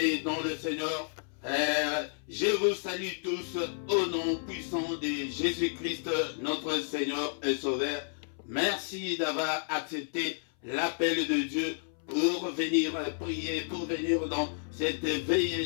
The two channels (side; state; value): right; silent; 57 dB below the other